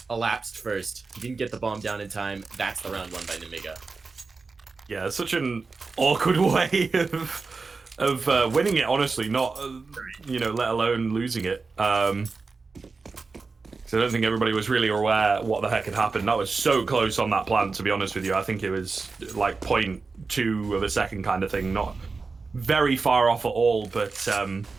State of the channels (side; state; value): left; quieter; 4.3 dB